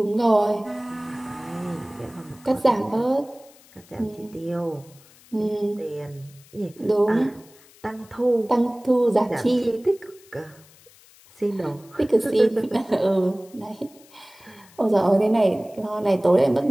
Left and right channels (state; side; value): noise; left; hiss, 26 dB below the sound